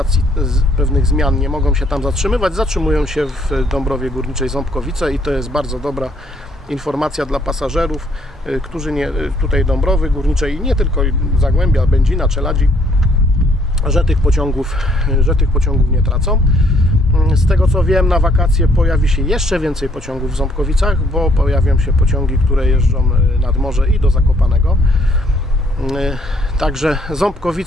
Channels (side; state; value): both; normal; correlation 0.66